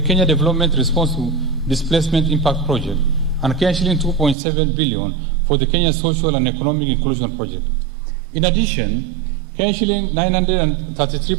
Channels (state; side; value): drops out; left; at 4.4 s